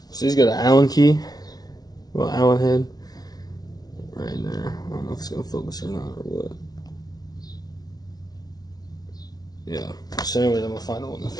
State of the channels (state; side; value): late; right; 0.19 ms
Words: So he's got an Allen key, well, Allen head, right there. I don't know if it's gonna focus or not or what. Yeah. So anyways, I'm gonna find the one that